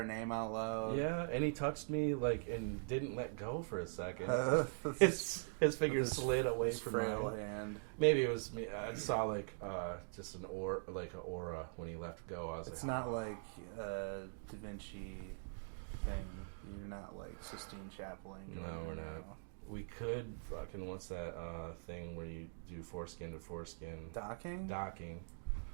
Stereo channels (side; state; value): left; silent; digital silence